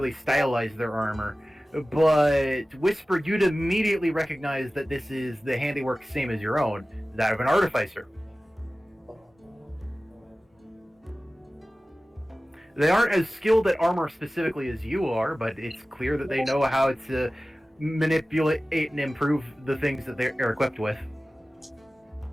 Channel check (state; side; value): normal; both; correlation 0.96